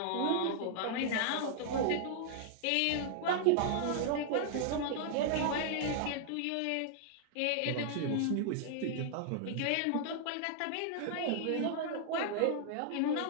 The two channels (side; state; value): both; different; correlation -0.01